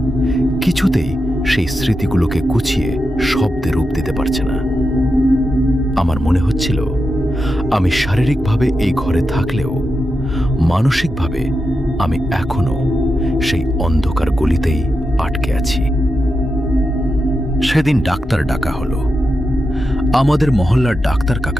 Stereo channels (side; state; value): both; normal; correlation 0.88